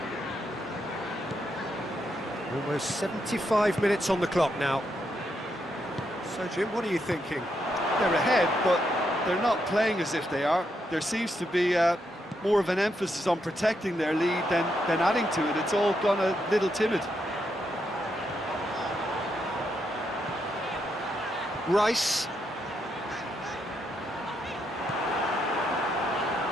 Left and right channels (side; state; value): both; normal; correlation 0.80